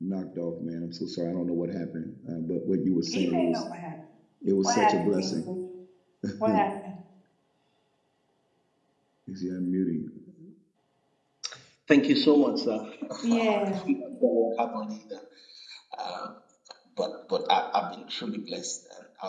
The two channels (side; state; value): both; identical; correlation 1.00